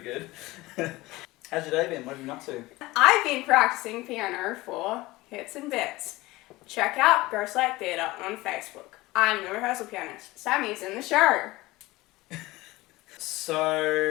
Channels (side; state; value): right; quieter; 19.9 dB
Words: How's your day been? What have you been up to? I've been practicing piano for Hits and Bits. Check out Ghostlight Theatre on Facebook. I'm the rehearsal pianist. Sami's in the show.